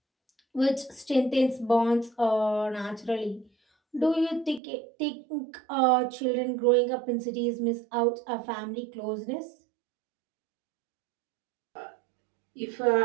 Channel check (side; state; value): left; drops out; at 4.6 s